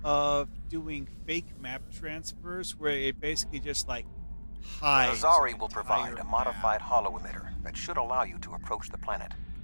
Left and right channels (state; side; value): inverted; both; correlation -1.00